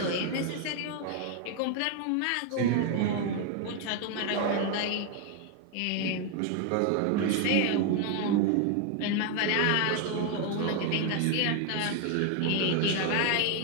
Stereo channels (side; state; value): both; different; correlation 0.01